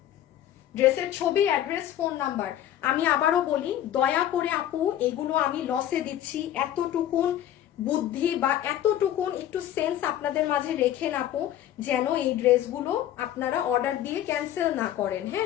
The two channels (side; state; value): right; quieter; 11.8 dB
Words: ড্রেসের ছবি, অ্যাড্রেস, ফোন নাম্বার। আমি আবারও বলি, দয়া করে আপু এগুলো আমি লসে দিচ্ছি, এতটুকুন বুদ্ধি বা এতটুকুন একটু সেন্স আপনাদের মাঝে রেখেন আপু, যেন এই ড্রেসগুলো আপনারা অর্ডার দিয়ে ক্যান্সেল না করেন।